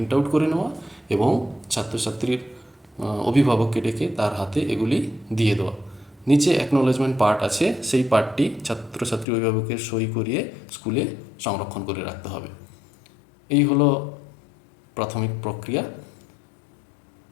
আউট করে নেওয়া এবং ছাত্রছাত্রীর অভিভাবককে ডেকে তার হাতে এগুলি দিয়ে দেওয়া। নিচে অ্যাকনোলেজমেন্ট পার্ট আছে, সেই পার্টটি ছাত্রছাত্রী অভিভাবকের সই করিয়ে স্কুলে সংরক্ষণ করে রাখতে হবে। এই হলো প্রাথমিক প্রক্রিয়া।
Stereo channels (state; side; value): drops out; right; at 9.2 s